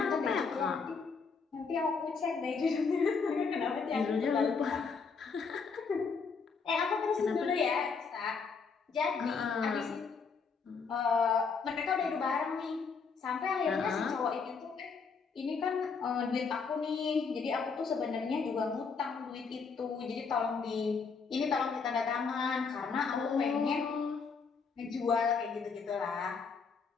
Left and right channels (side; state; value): right; quieter; 5.2 dB